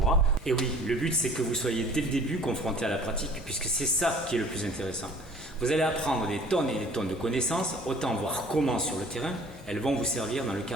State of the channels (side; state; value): both; normal; correlation 0.50